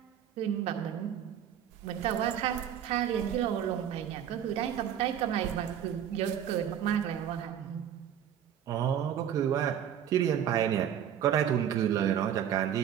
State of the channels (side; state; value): left; quieter; 9.6 dB